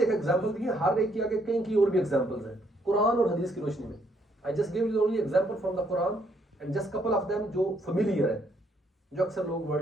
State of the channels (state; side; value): normal; both; correlation 0.71